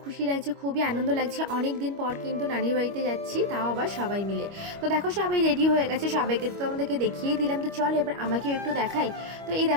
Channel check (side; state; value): left; late; 25 ms